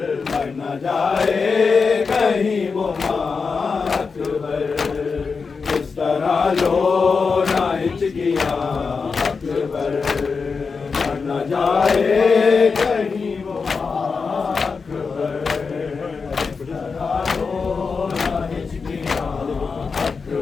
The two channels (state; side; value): quieter; right; 5.0 dB